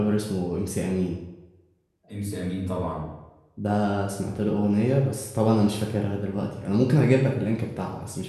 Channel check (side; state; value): both; identical; correlation 1.00